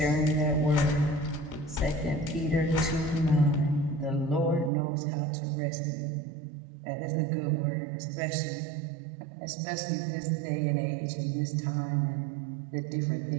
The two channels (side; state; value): left; drops out; at 4.7 s